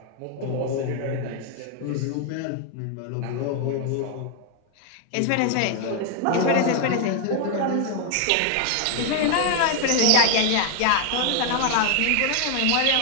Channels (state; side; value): different; both; correlation 0.00